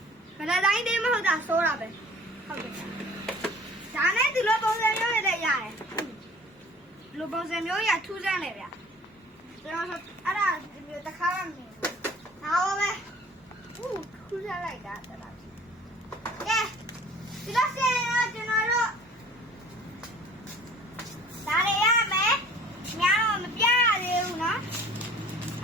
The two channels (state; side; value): normal; both; correlation 0.49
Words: ဗလာတိုင်းသေးမဟုတ်တာစိုးတာပဲဟုတ်တယ်ဒါနဲ့ဒီလိုပုံစံမျိုးတွေလည်းရတယ်ဒီလိုပုံစံမျိုးရထူးဆန်းလေဗျကျွန်တော်အဲ့ဒါတခါမှမမြင်ဘူးဒါပါပဲထူးဆန်းလိုက်တာတော်တော်ကဲဒီလိုစင်ရောကျွန်တော်တို့ဒါတွေရမယ်များတော့မပြရသေးဘူးနော်ဒ